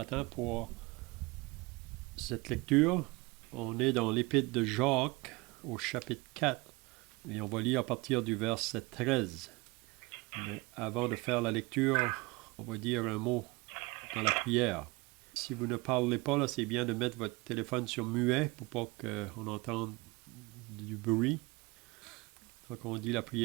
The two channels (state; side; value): quieter; left; 24.5 dB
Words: pour cette lecture. On est dans l'Épître de Jacques au chapitre 4 et on va lire à partir du verset 13. Mais avant de faire la lecture, on va dire un mot dans la prière. Si vous ne parlez pas, là, c'est bien de mettre votre téléphone sur muet pour pas qu'on entende du bruit. Donc on dit la